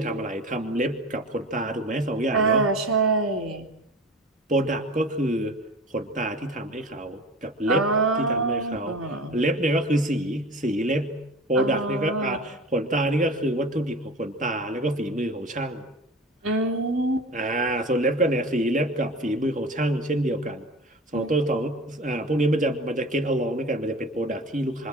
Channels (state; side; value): normal; both; correlation 0.36